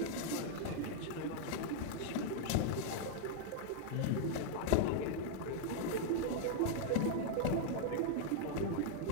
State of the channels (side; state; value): both; different; correlation -0.01